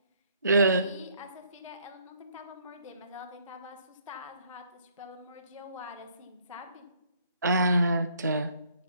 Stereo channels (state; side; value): inverted; both; correlation -0.64